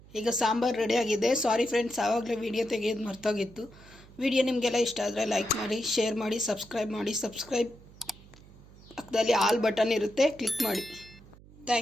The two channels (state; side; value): noise; right; hum, 22 dB below the sound